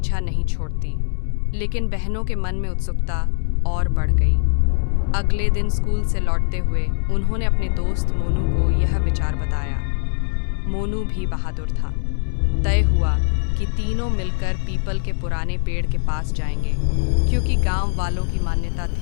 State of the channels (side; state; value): right; silent; 65 dB below the other